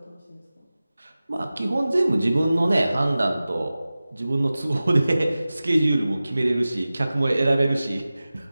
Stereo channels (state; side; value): inverted; both; correlation -0.96